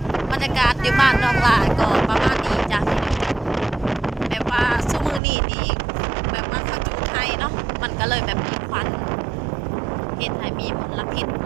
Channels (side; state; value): left; drops out; at 5.2 s